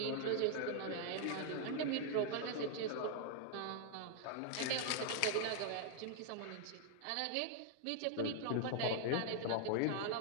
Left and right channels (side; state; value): both; different; correlation -0.01